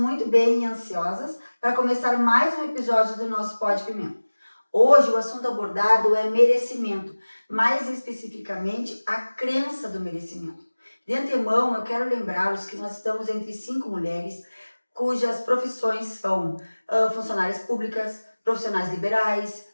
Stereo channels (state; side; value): inverted; both; correlation -1.00